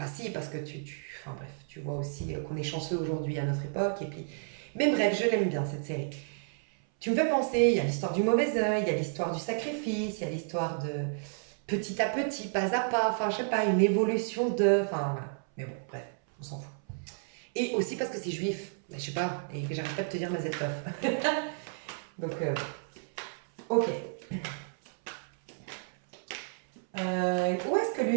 si, parce que enfin bref, tu vois aussi qu'on est chanceux aujourd'hui à notre époque et puis... Mais bref, je l'aime bien cette série. Tu me fais penser, il y a l'histoire du mauvais œil, il y a l'histoire du sacrifice, il y a l'histoire de petit à petit, pas à pas, enfin je sais pas, une évolution de... Enfin voilà. Mais bon, bref, on s'en fout. Et aussi parce que c'est juif, je sais pas, et que j'arrête pas de te dire Mazel Tov. Donc, ok. Où est-ce que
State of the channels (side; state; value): left; silent; 57 dB below the other